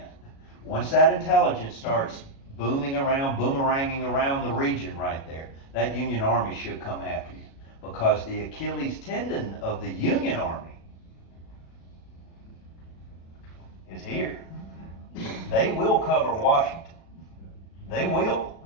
Once that intelligence starts boomeranging around the region right there, that Union Army should come after you. Because the Achilles tendon of the Union Army is here. They will cover Washington. They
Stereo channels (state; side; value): late; right; 36 ms